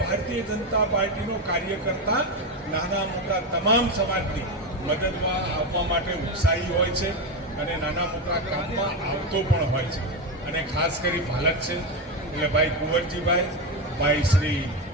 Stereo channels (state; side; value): normal; both; correlation 0.13